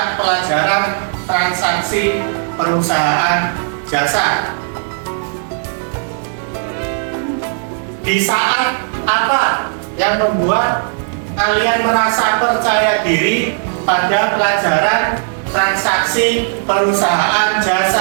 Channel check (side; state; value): left; silent; digital silence